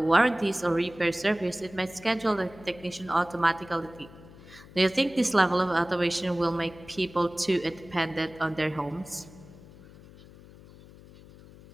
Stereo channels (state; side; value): noise; left; hum, 20 dB below the sound